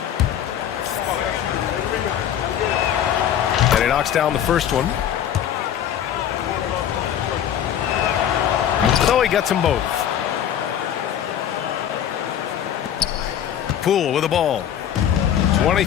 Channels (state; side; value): quieter; right; 10.0 dB